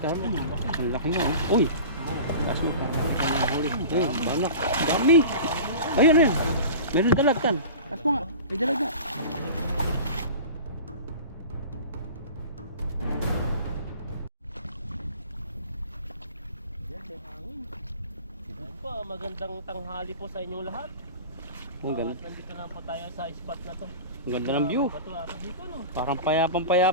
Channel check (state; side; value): inverted; both; correlation -0.37